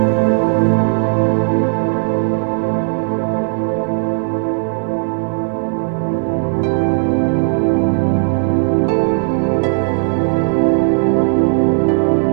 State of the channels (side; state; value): left; silent; digital silence